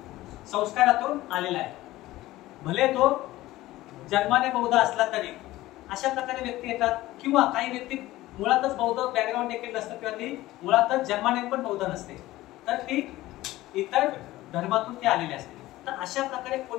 संस्कारातून आलेला आहे. भले तो जन्माने बौद्ध असला तरी अशा प्रकारे व्यक्ती येतात. किंवा काही व्यक्ती मुळातच बौद्ध बॅकग्राऊंड देखील नसतं, किंवा ती मुळातच जन्माने पण बौद्ध नसते, तर ती इतर धर्मातून ती आलेली असते. तर अशा प्रकारे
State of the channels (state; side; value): quieter; right; 16.9 dB